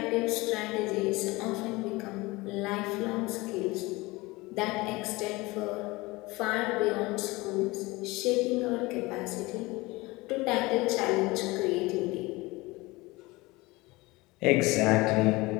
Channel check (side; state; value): right; quieter; 22.2 dB